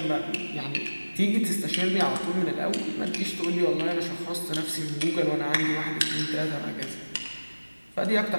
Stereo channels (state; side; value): inverted; both; correlation -1.00